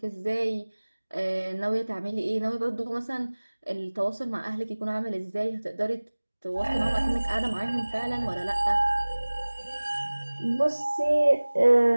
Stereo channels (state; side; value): inverted; both; correlation -1.00